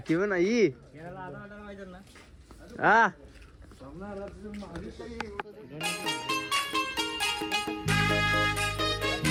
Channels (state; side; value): identical; both; correlation 1.00